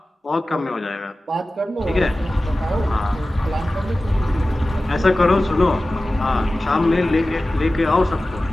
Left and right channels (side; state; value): both; normal; correlation 0.96